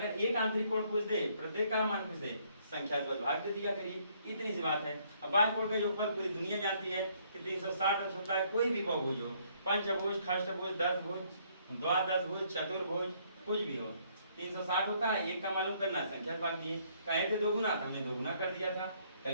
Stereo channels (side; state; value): both; inverted; correlation -0.67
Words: एक आंतरिक कोण पूछ दे, प्रत्येक का मान पूछ दे, संख्या से बस भाग दे दिया करिए, इतनी सी बात है। अब बाह्य कोण का योगफल पूरी दुनिया जानती है कि 360 होता है, कोई भी बहुभुज हो, पंचभुज, खष्टभुज, दशभुज, द्वादशभुज, चतुर्भुज, कुछ भी हो, 360 होता है। एक का मालूम करना है, संख्या से भाग दिए, कहे थे 2 गुना, हमने 2 गुना कर दिया था,